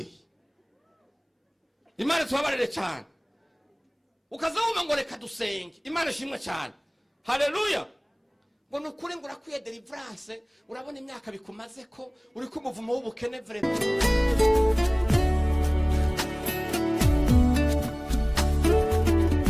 Imana tubabarire cyane. Ukazawuma ngo reka dusenge. Imana ishimwe cyane. Haleluya. Ngo nukuri ngo urakwiye deliverance. Urabona imyaka bikumaze ko uri kumuvumo w'ubukene vrema.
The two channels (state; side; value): identical; both; correlation 1.00